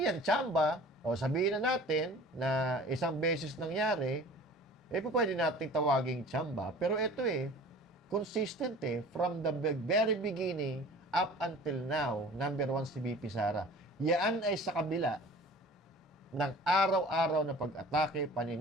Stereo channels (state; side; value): normal; both; correlation 0.44